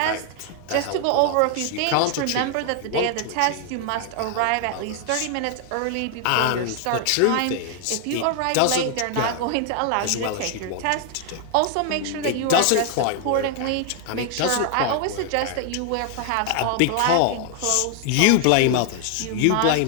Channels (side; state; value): both; different; correlation 0.00